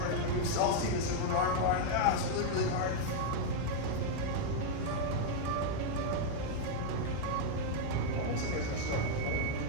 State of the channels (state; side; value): different; both; correlation -0.01